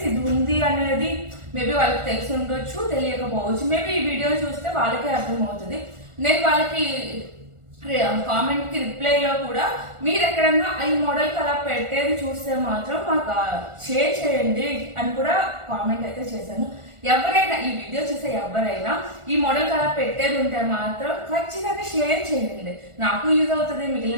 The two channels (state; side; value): late; left; 1.4 ms